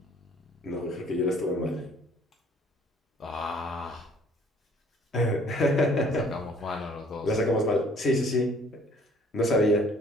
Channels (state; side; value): normal; both; correlation 0.57